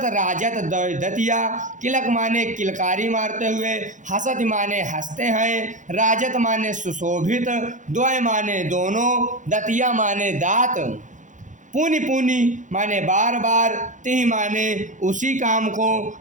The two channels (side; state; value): left; late; 0.36 ms